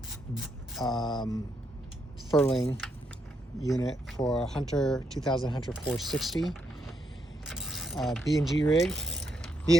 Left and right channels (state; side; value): normal; both; correlation 0.78